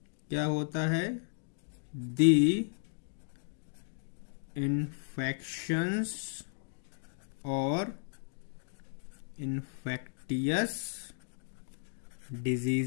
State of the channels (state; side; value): silent; right; digital silence